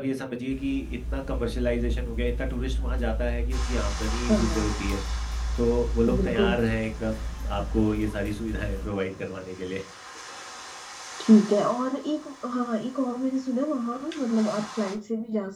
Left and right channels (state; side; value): identical; both; correlation 1.00